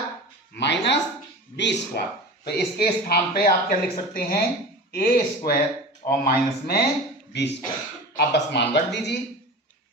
minus b square. तो इसके स्थान पे आप क्या लिख सकते हैं, a स्क्वायर और माइनस में b स्क्वायर। आप बस मान रख दीजिए।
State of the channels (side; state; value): both; normal; correlation 0.33